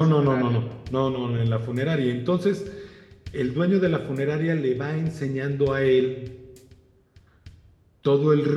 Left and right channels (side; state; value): both; identical; correlation 1.00